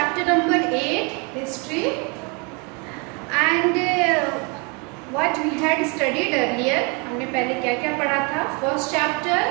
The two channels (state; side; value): quieter; left; 32.2 dB